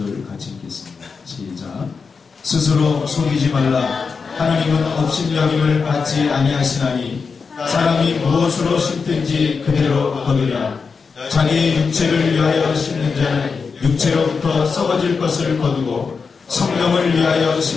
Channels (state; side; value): quieter; right; 5.2 dB